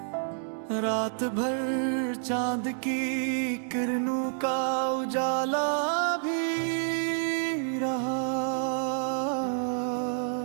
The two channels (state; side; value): silent; left; 59 dB below the other